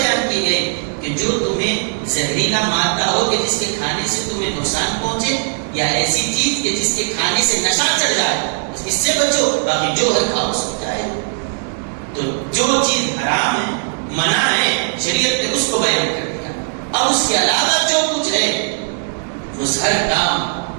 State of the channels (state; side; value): silent; left; digital silence